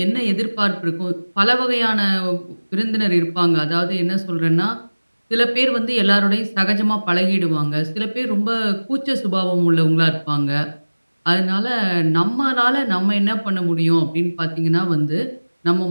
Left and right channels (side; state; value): both; inverted; correlation -1.00